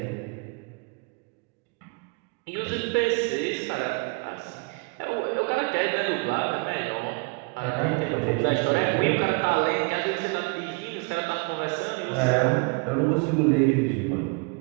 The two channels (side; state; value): left; quieter; 31.7 dB